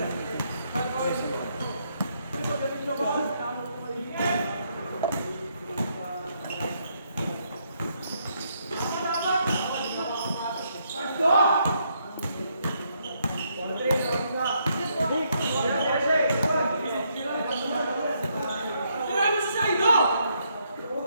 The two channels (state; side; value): inverted; both; correlation -0.75